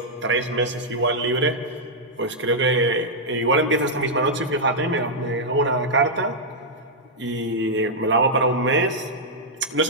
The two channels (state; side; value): normal; both; correlation -0.06